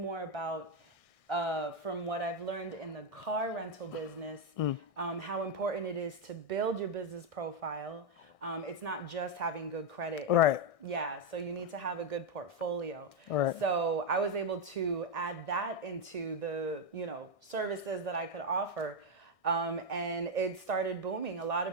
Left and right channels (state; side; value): late; right; 1.6 ms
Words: more about, from what I've learned in the car rental business, how important it is to build your business profile. It's not just having good credit. Right. Yeah, so you need to have a good portfolio. Right. So I was able to add that into the, services that I could offer. And it started booming. A lot